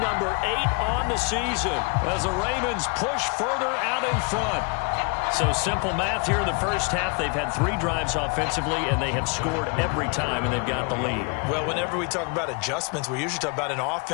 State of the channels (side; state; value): right; quieter; 32.8 dB